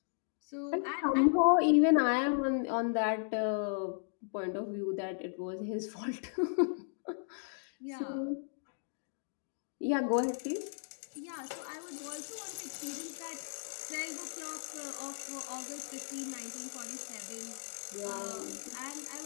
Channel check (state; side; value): silent; right; digital silence